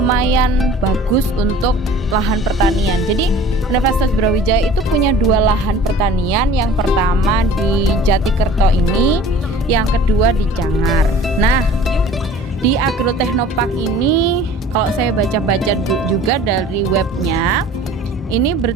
bagus untuk lahan pertanian. Jadi Universitas Brawijaya itu punya dua lahan pertanian. Yang pertama di Jatikerto ini, yang kedua di Cangar. Nah, di Agroteknopark ini kalau saya baca-baca juga dari webnya, ini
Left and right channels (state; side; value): normal; both; correlation 0.46